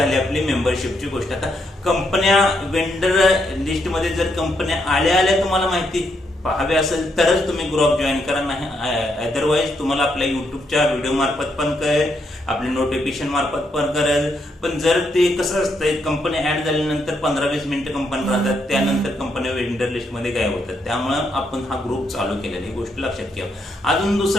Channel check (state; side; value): normal; both; correlation 0.78